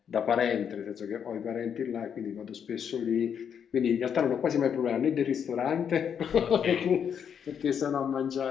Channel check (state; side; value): quieter; right; 7.9 dB